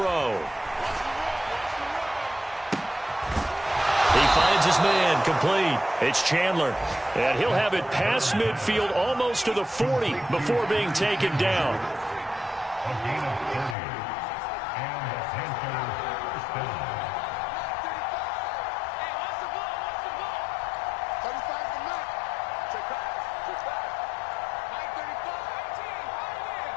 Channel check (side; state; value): right; drops out; at 13.8 s